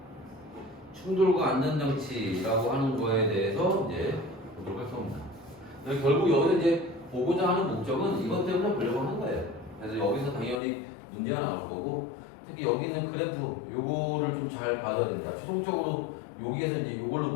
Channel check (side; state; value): right; drops out; at 10.6 s